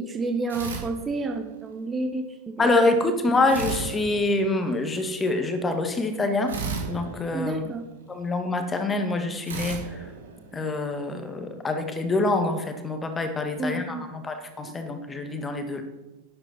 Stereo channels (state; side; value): normal; both; correlation 0.56